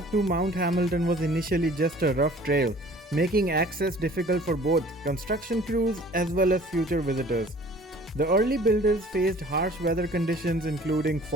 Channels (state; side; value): normal; both; correlation 0.50